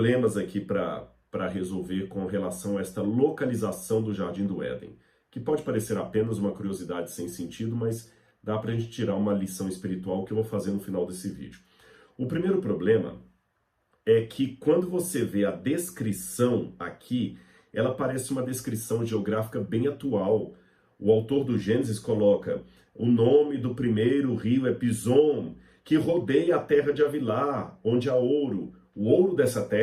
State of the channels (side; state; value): both; identical; correlation 1.00